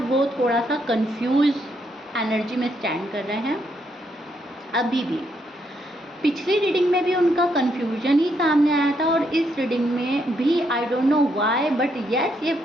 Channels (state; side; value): normal; both; correlation 0.76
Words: वो थोड़ा सा कंफ्यूज एनर्जी में स्टैंड कर रहे हैं अभी भी। पिछली रीडिंग में भी उनका कंफ्यूजन ही सामने आया था और इस रीडिंग में भी I don't know why, but yes, ये